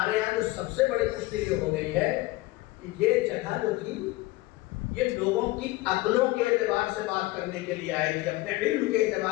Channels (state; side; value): quieter; right; 19.5 dB